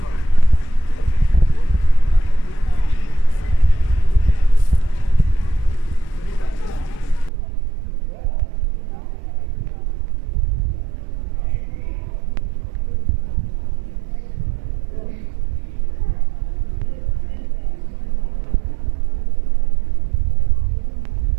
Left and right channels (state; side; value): drops out; left; at 7.3 s